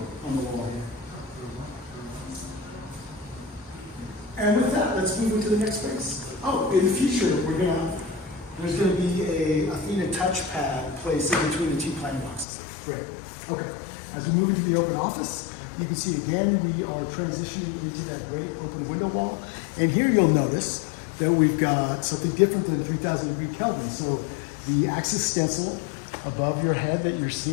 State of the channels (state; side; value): drops out; right; at 12.5 s